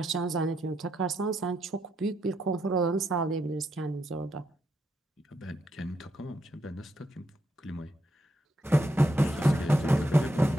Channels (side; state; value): both; normal; correlation 0.80